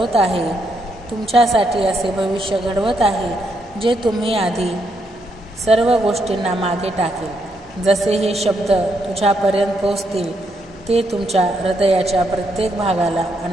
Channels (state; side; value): normal; both; correlation 0.77